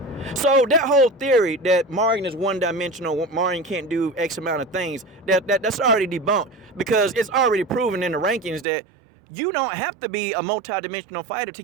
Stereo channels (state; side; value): drops out; left; at 8.7 s